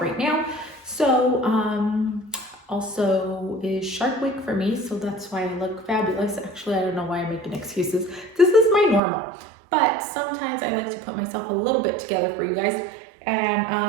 right now. So also is Shark Week for me, so that's why I look fabulous. Actually, I don't know why I'm making excuses. This is my normal, but sometimes I like to put myself a little bit together for you guys, and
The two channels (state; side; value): drops out; left; at 9.0 s